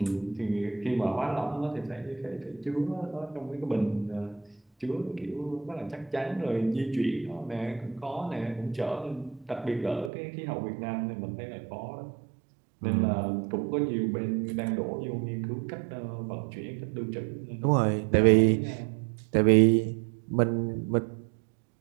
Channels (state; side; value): drops out; left; at 10.1 s